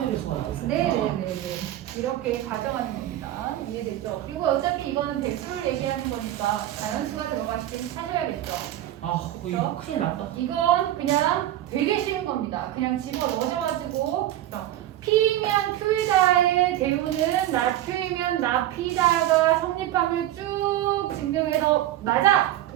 배수가 나올 수 있구나. 네네네네. 이렇게 가정하는 겁니다. 이해됐죠? 그리고 어차피 이거는 배수를 얘기하는 거니까 자연수가 들어갔을 때 찾아야겠죠. 아 이거 큰일 났다. 이건 그냥 되게 쉬운 겁니다. 그냥 집어 넣어줘가지고 P면 Q이다의 대우는 나Q이면 나P다가 성립함을 쭉 증명해서 맞아!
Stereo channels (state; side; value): quieter; left; 13.3 dB